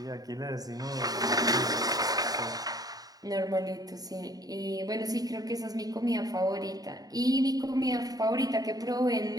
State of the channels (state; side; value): late; left; 0.18 ms